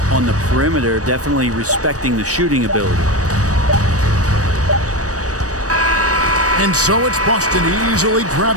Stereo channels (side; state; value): left; late; 0.66 ms